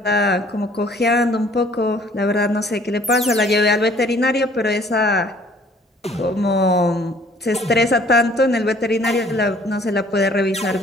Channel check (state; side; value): normal; both; correlation 0.57